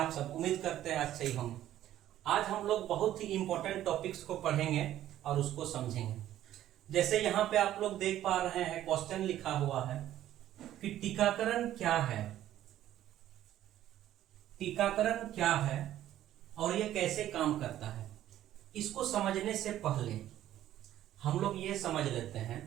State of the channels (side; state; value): left; quieter; 12.6 dB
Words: सब? उम्मीद करते हैं अच्छे ही होंगे। आज हम लोग बहुत ही इंपॉर्टेंट टॉपिक्स को पढ़ेंगे और उसको समझेंगे। जैसे यहाँ पे आप लोग देख पा रहे हैं, क्वेश्चन लिखा हुआ है कि टीकाकरण क्या है। टीकाकरण क्या है और ये कैसे काम करता है, इसको समझने से पहले हम लोग ये समझ लेते हैं